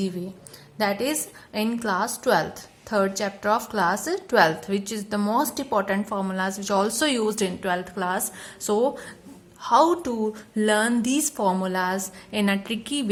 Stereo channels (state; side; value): identical; both; correlation 1.00